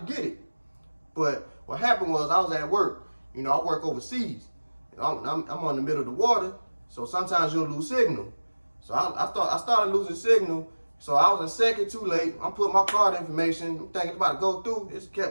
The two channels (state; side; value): inverted; both; correlation -1.00